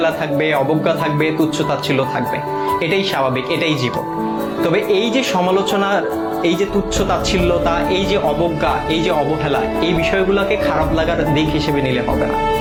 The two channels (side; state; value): both; identical; correlation 1.00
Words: থাকবে, অবজ্ঞা থাকবে, তুচ্ছ-তাচ্ছিল্য থাকবে। এটাই স্বাভাবিক, এটাই জীবন। তবে এই যে সমালোচনার, এই যে তুচ্ছ-তাচ্ছিল্যতা, এই যে অবজ্ঞা, এই যে অবহেলা, এই বিষয়গুলোকে খারাপ লাগার দিক হিসেবে নিলে হবে না।